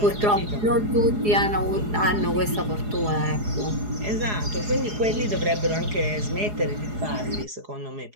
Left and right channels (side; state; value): left; late; 4.8 ms